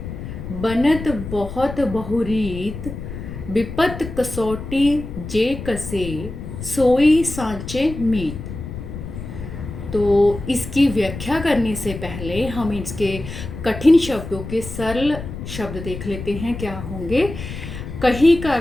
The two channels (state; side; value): noise; left; rumble, 9 dB below the sound